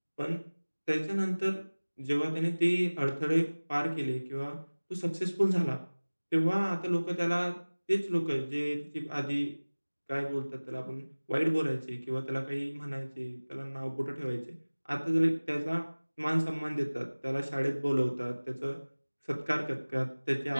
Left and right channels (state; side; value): inverted; both; correlation -1.00